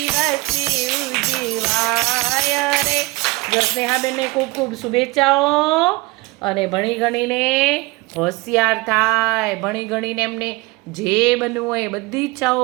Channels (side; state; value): left; quieter; 22.9 dB